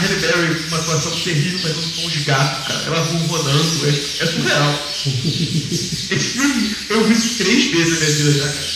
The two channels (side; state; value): both; identical; correlation 1.00